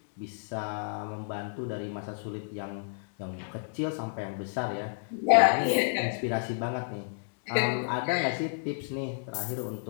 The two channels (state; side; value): silent; right; digital silence